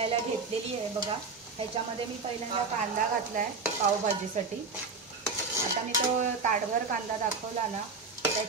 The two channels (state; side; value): quieter; left; 4.4 dB